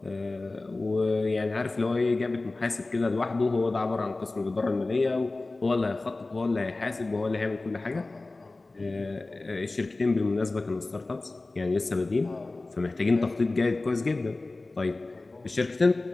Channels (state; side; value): quieter; right; 3.2 dB